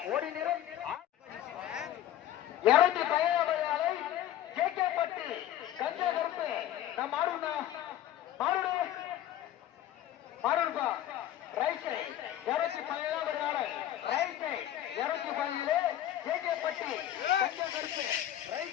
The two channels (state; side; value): quieter; right; 12.3 dB